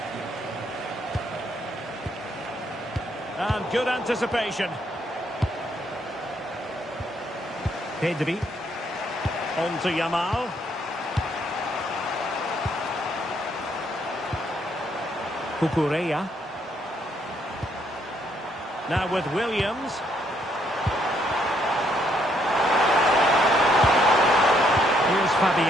And good anticipation. Pedri. On to Yamal. Cucurella. Now with Williams. Here's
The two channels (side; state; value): both; normal; correlation 0.71